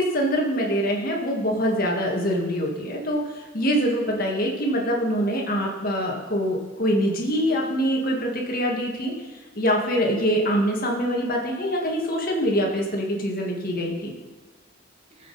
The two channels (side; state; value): both; normal; correlation 0.40